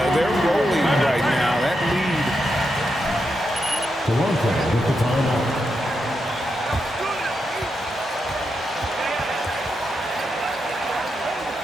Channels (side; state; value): both; normal; correlation 0.85